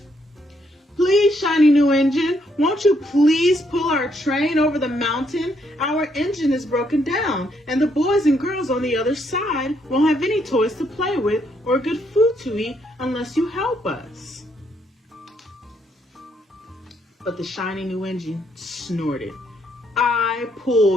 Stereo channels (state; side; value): normal; both; correlation 0.73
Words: "Please, shiny new engine, won't you please pull our train over the mountain? Our engine is broken down, and the boys and girls on the other side won't have any toys to play with or good food to eat unless you help us." But the shiny new engine snorted, "I